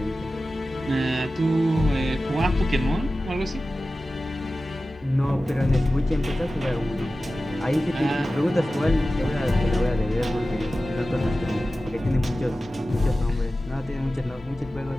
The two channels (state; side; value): normal; both; correlation 0.95